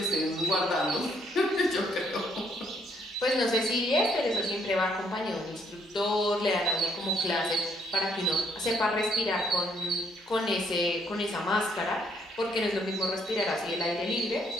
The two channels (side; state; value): both; normal; correlation 0.69